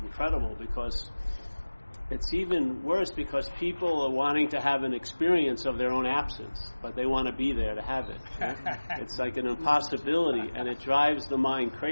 incredible because it's even worse because people are wanting to have an experience of their own absence, but they want to be there to have it. It's like an impossibility, and it drives the mind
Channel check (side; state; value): both; inverted; correlation -1.00